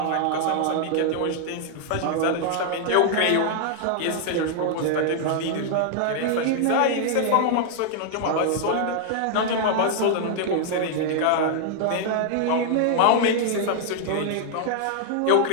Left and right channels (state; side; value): different; both; correlation -0.01